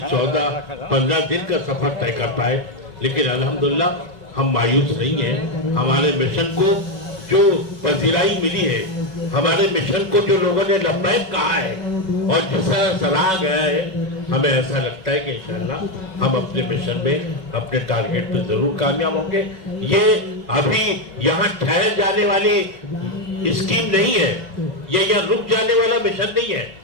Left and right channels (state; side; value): late; left; 5.3 ms